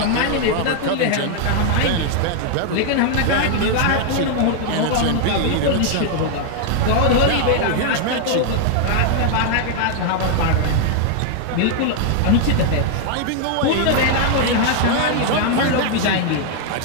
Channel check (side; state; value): both; different; correlation 0.00